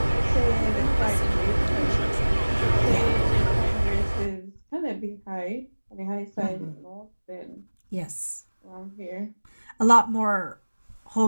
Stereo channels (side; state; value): both; inverted; correlation -1.00